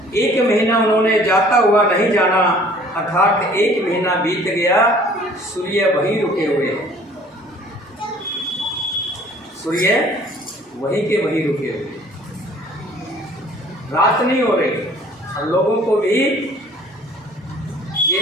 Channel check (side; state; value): both; normal; correlation 0.53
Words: एक महीना उन्होंने जाता हुआ नहीं जाना, अर्थात एक महीना बीत गया, सूर्य वहीं रुके हुए। सूर्य वहीं के वहीं रुके हुए, रात नहीं हो रही, और लोगों को भी ये